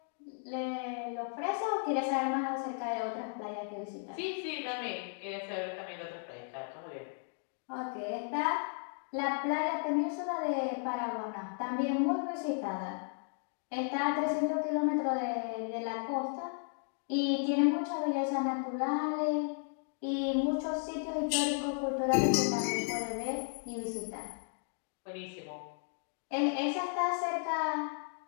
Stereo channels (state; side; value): silent; right; 55 dB below the other